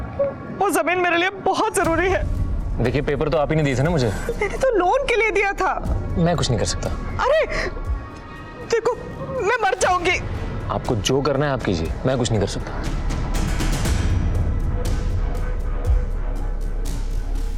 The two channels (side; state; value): both; identical; correlation 1.00